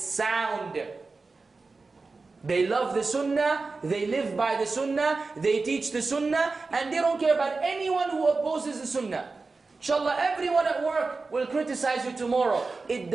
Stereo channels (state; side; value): quieter; left; 3.9 dB